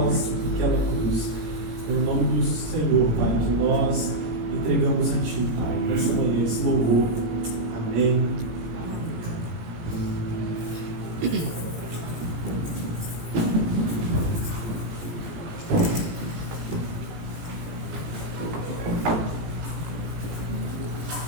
naquela cruz. No nome do Senhor, Pai, que nós entregamos a Ti, Pai, nessa manhã, esse louvor. Amém.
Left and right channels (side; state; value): left; late; 17 ms